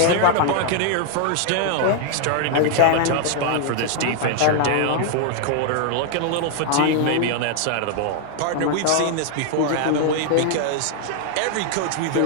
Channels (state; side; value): different; both; correlation 0.00